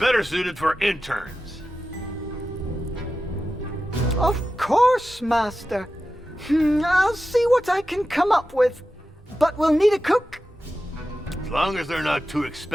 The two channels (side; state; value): both; normal; correlation 0.92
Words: suited for interns. Of course, Master. I'll see what I can come up with. But we'll need a cook. As long as they're not too